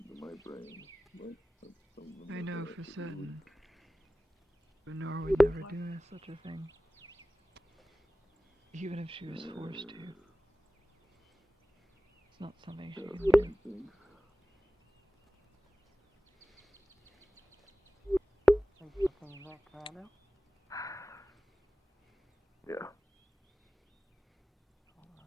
my brain. I know for certain. But Nora would never do such a thing. Even if she was forced to. It's not something she can do. Thanks for coming back, Corrado. Yeah.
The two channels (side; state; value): both; normal; correlation 0.97